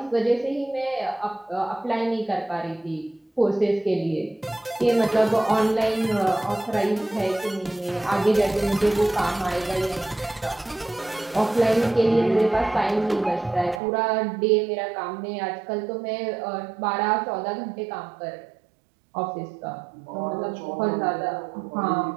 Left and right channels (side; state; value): left; drops out; at 13.8 s